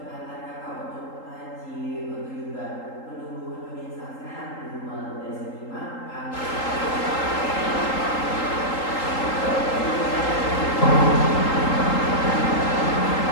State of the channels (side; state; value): right; late; 3.8 ms